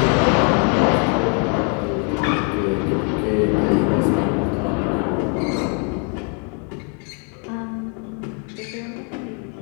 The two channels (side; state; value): right; quieter; 38.9 dB